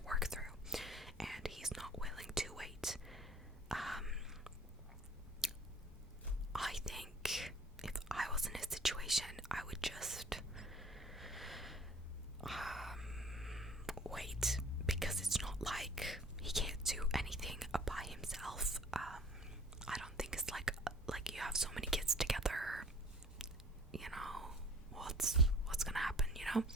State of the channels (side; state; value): both; normal; correlation 0.49